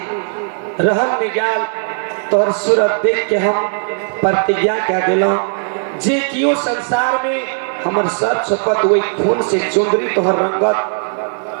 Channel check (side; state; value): left; silent; digital silence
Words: रहल में गल, तोहर सूरत देख के हम प्रतिज्ञा क्या दिलों, जे कियो संसार में हमर सर छपत वही खून से चुंदरी तोहर